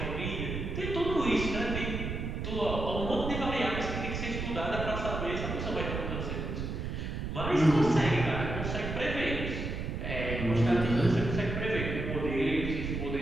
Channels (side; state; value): right; noise; rumble, 4 dB below the sound